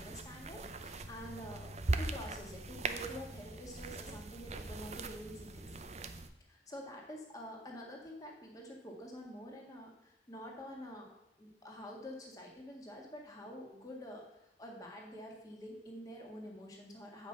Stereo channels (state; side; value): normal; both; correlation 0.63